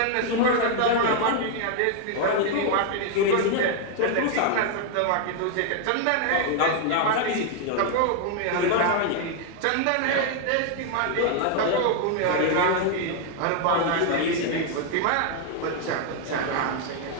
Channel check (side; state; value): both; different; correlation 0.00